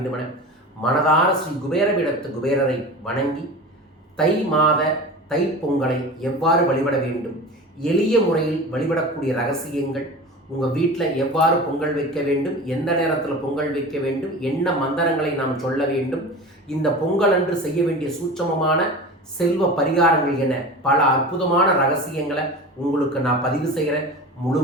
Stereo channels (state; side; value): normal; both; correlation 0.33